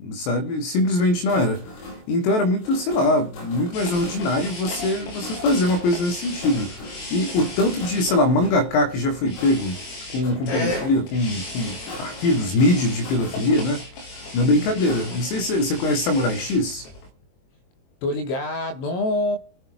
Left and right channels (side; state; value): right; late; 23 ms